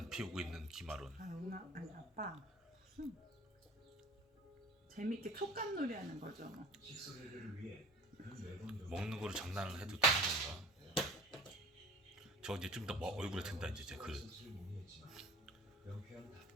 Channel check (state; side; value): normal; both; correlation 0.43